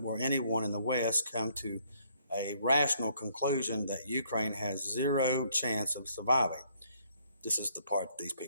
will anyone in the West come to a rational conclusion that Ukraine has zero chance of surviving? This is the part that these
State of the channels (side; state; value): both; inverted; correlation -0.67